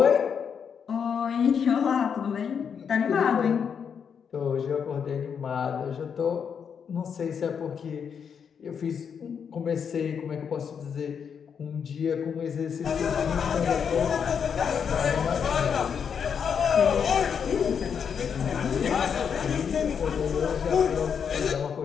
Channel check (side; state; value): right; quieter; 7.1 dB